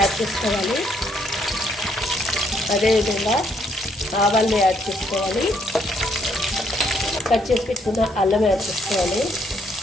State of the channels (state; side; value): normal; both; correlation 0.70